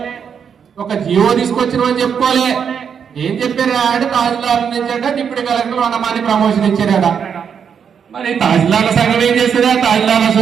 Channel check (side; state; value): left; quieter; 7.3 dB